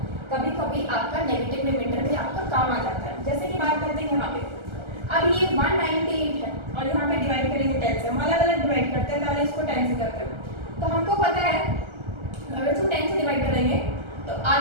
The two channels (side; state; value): left; late; 1.3 ms